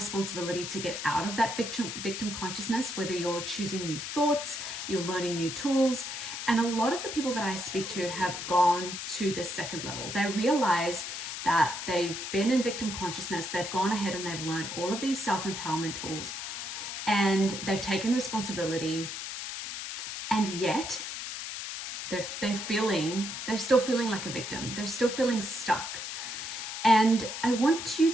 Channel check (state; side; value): noise; left; hiss, 6 dB below the sound